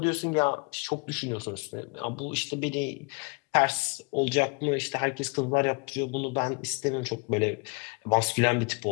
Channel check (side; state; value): right; quieter; 31.2 dB